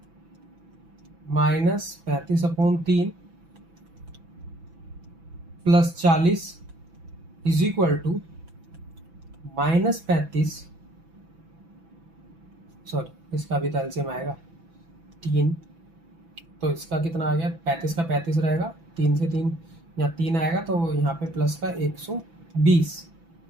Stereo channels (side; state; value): left; late; 6.0 ms